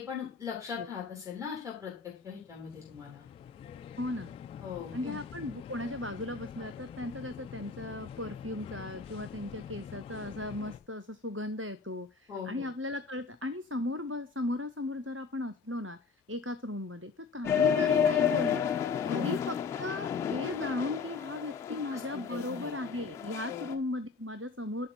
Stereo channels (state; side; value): quieter; right; 4.7 dB